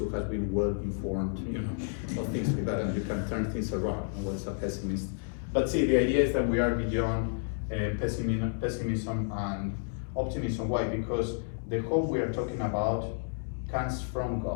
has been well informed, you know, of things like that, and you can turn things around. And what's a pessimist? But see, the idea is that we are beyond pessimism and optimism. Why? Because the hope we are talking about comes from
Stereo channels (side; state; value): right; silent; digital silence